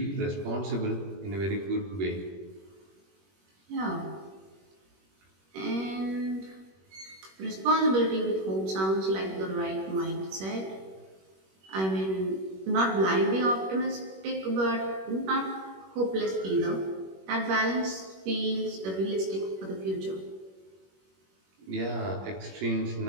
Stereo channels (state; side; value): late; left; 21 ms